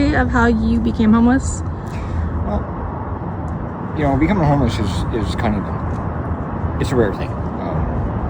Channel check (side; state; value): both; identical; correlation 1.00